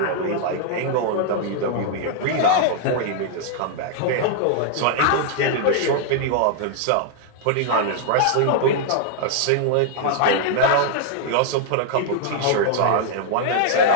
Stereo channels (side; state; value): both; different; correlation -0.01